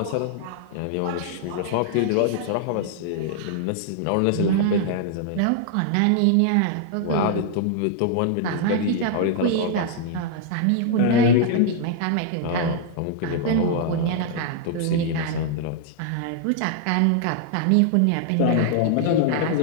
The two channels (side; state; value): both; different; correlation -0.01